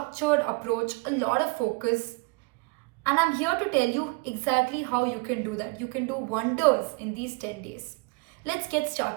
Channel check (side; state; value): left; quieter; 29.6 dB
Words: approach, a lot of focus, and I'm here to tell you exactly how you can do that. You can do wonders in these 10 days. Let's get